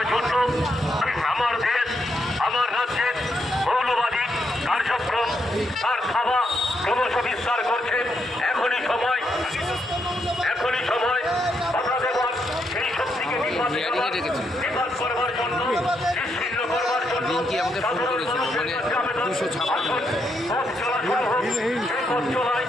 জন্য আমার দেশ, আমার রাজ্যের মৌলবাদী কার্যক্রম তার থাবা ক্রমশ বিস্তার করছে। এখনই সময় বাধা দেওয়ার, সেই শক্তিকে নিপাত করবার জন্য, নিশ্চিহ্ন করবার জন্য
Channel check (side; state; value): both; normal; correlation 0.79